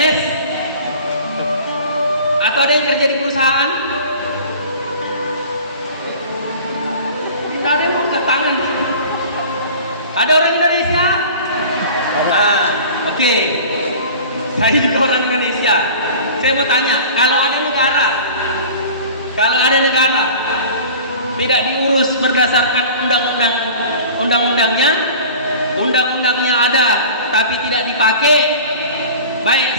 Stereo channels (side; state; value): both; inverted; correlation -0.41